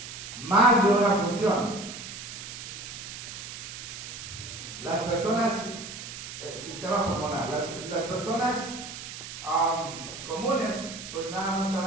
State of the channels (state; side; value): noise; right; hiss, 10 dB below the sound